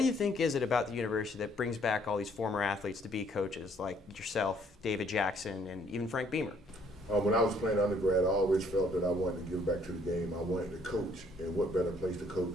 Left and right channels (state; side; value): normal; both; correlation 0.64